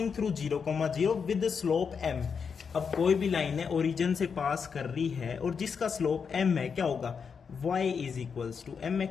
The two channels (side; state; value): right; quieter; 6.1 dB